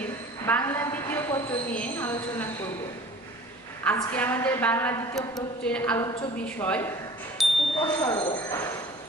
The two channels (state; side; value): normal; both; correlation 0.45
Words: বাংলা দ্বিতীয় পত্র নিয়ে আলোচনা করব। আজকে আমাদের বাংলা দ্বিতীয় পত্রের আলোচ্য বিষয় উপসর্গ।